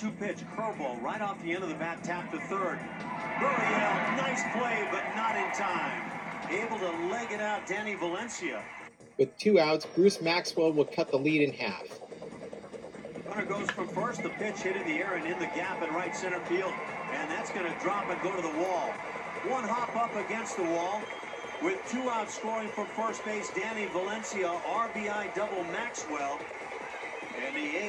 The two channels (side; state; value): both; identical; correlation 1.00